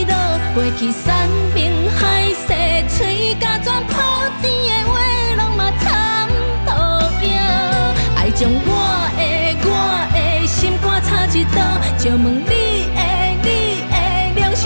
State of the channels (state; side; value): inverted; both; correlation -1.00